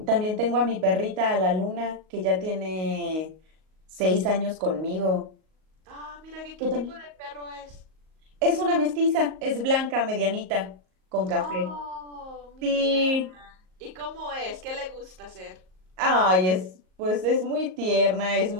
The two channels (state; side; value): late; left; 38 ms